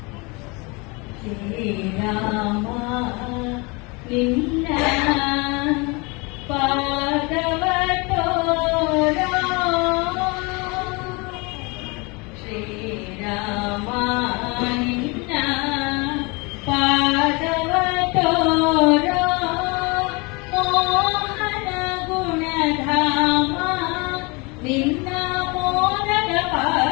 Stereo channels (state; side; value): quieter; right; 28.0 dB